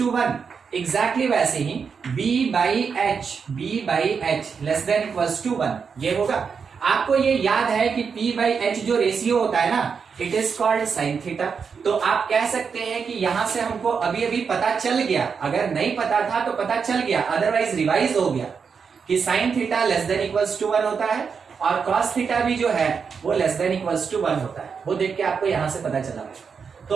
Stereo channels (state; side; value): quieter; left; 6.0 dB